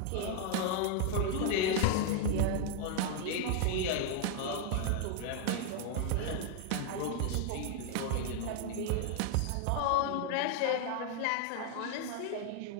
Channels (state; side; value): different; both; correlation 0.00